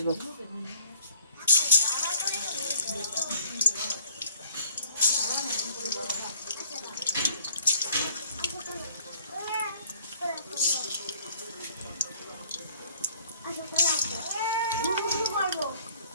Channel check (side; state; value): both; inverted; correlation -0.57